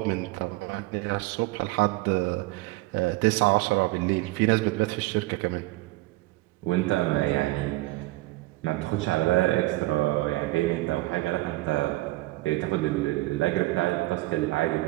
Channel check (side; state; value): left; quieter; 20.0 dB